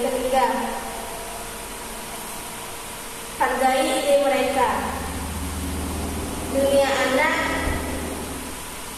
ketiga, hargai ide mereka. Dunia anak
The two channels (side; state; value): both; identical; correlation 1.00